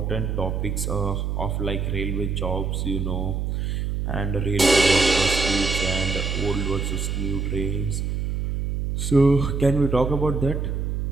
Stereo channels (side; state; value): right; noise; hum, 1 dB below the sound